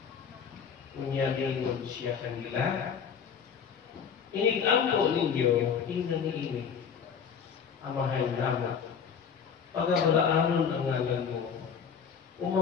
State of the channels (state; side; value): quieter; right; 7.0 dB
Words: Unya dingon siya kanila, inig-ampo ninyo, ingnan niini. Amahan naman, pagabalaanon ang ngalan mo,